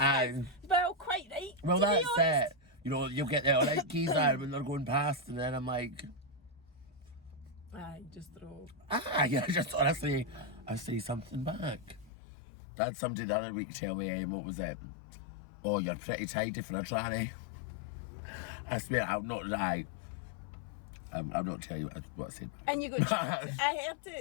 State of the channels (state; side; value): drops out; right; at 12.1 s